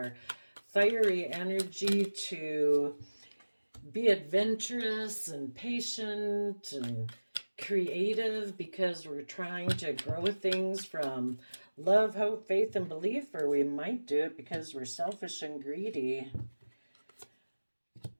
fiery energy to be adventurous and patient and creative because we're trying to grow things from love, hope, faith, and belief, or we might do it because we're selfish and greedy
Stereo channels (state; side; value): inverted; both; correlation -1.00